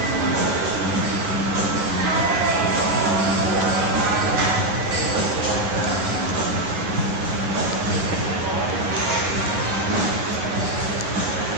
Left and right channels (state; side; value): late; left; 9.5 ms